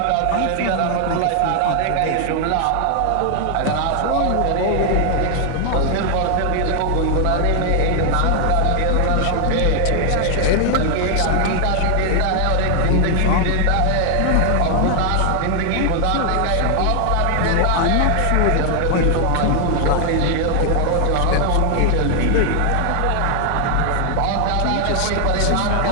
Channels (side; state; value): both; different; correlation 0.00